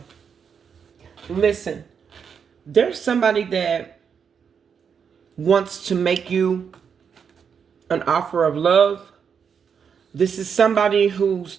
Listen, there's somebody that wants to make you an offer of love. This is somebody whose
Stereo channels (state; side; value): quieter; left; 6.8 dB